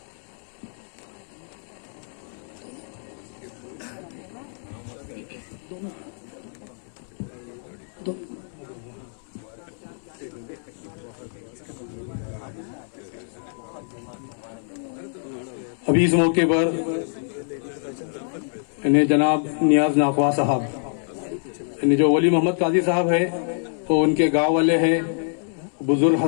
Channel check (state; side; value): silent; right; digital silence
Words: अभी इस मौके पर इन्हें जनाब नियाज नाकवा साहब, इन्हें जो वली मोहम्मद काजी साहब है तो उनके गांव वाले हैं, बुजुर्ग